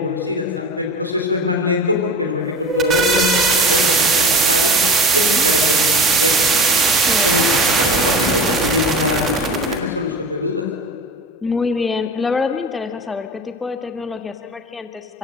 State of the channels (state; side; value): normal; both; correlation 0.33